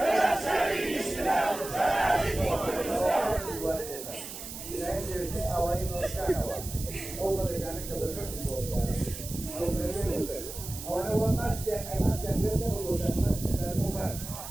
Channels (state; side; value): noise; right; hiss, 10 dB below the sound